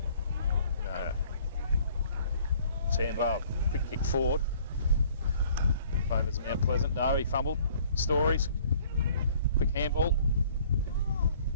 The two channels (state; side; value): inverted; both; correlation -0.57